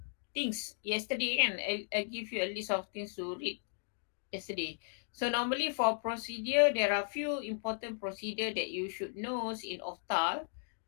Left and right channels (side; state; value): right; silent; digital silence